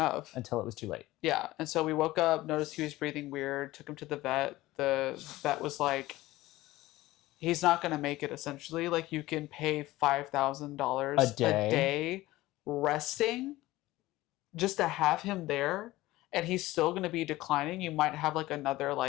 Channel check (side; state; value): right; quieter; 17.7 dB